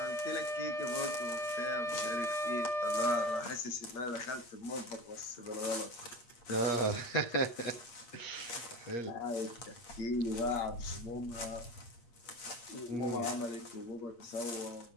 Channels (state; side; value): late; right; 8.5 ms